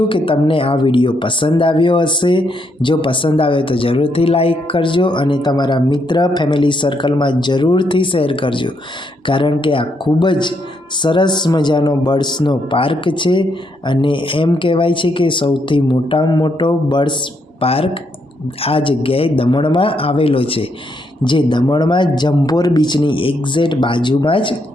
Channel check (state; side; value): normal; both; correlation 0.76